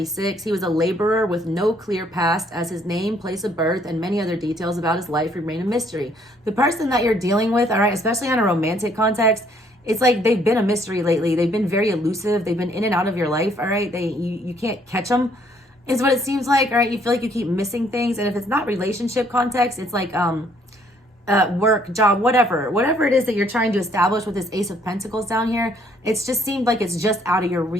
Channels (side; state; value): both; normal; correlation 0.65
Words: He was a laborer with no clear past, as his name, place of birth, and many other details about his life remain a mystery. The person that you're dealing with, all right, especially on a romantic context, it's like they've been a mystery lately. They've been very elusive. They've been in and out of your life, all right? You can't catch them, is what it seems like, all right? You feel like you keep missing things. And if it's not relationship context, it's like work, job, whatever it is that you're trying to establish with this Ace of Pentacles down here. It's just seemed like it's just out of your